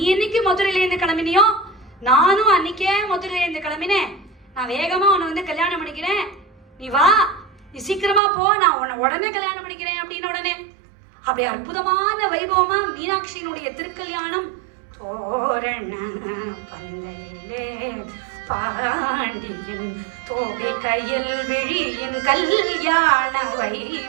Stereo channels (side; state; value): left; drops out; at 8.2 s